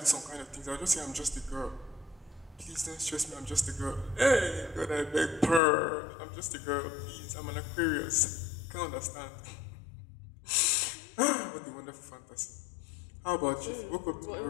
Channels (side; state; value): right; drops out; at 5.6 s